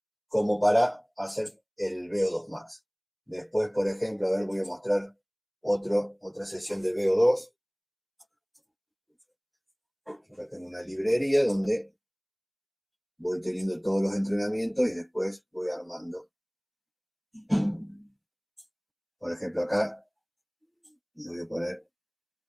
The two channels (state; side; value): identical; both; correlation 1.00